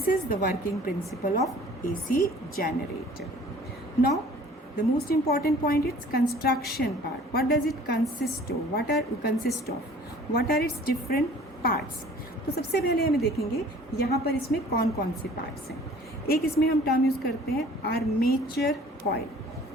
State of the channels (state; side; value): normal; both; correlation 0.50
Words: is the working principle of AC generator. Now the most important point is construction part. What does it consist of? What are its different parts? तो सबसे पहले हमें देखेंगे यहाँ पर इसमें कौन कौन से पार्ट्स हैं. एक इसमें हम टर्म यूज करते हैं armature coil.